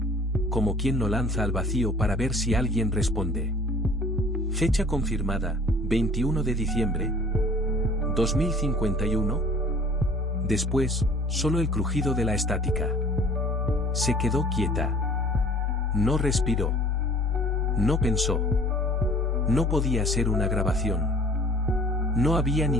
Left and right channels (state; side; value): normal; both; correlation 0.51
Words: Como quien lo lanza al vacío para ver si alguien responde. Fecha confirmada, 21 de diciembre. 2051. Después, solo el crujido de la estática. Se quedó quieta. No respiró. No pensó. No podía ser una grabación. No había